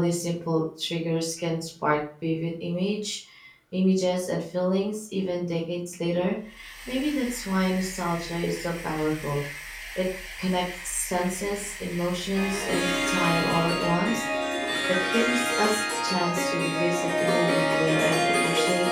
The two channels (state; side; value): identical; both; correlation 1.00